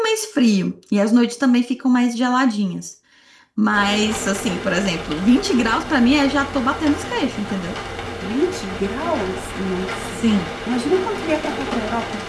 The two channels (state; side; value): identical; both; correlation 1.00